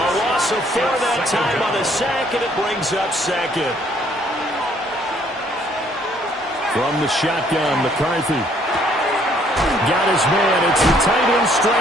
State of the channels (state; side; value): normal; both; correlation 0.64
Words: loss of 4 that time on the sack, and it brings up second. From the shotgun, McCarthy. Got his man. It's the tight end